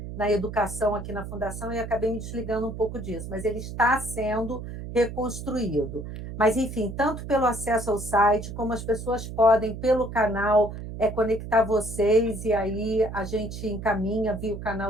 educação aqui na Fundação e acabei me desligando um pouco disso, mas ele está sendo reconstruído. Mas, enfim, tanto pelo acesso ao site, como as pessoas podem, pelo canal, conectar vocês e aí a gente encaminha via o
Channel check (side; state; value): right; noise; hum, 9 dB below the sound